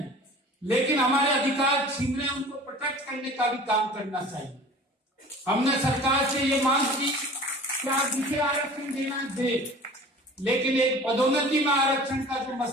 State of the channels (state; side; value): normal; both; correlation 0.43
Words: लेकिन हमारे अधिकार छीन रहे उनको प्रोटेक्ट करने का भी काम करना चाहिए। हमने सरकार से ये मांग की कि आप जिसे आरक्षण देना दे, लेकिन एक पदोन्नति में आरक्षण का जो